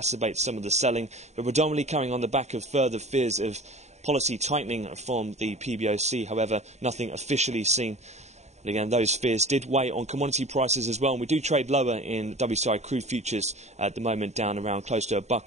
some of the selling, but predominantly coming on the back of further fears of policy tightening from the PBOC. However, nothing officially seen. But again, those fears did weigh on commodity prices as well, and we do trade lower in WTI crude futures at the moment, down around close to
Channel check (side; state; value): left; late; 0.32 ms